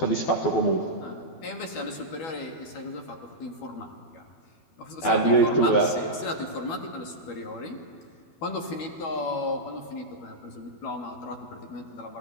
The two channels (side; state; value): right; late; 12 ms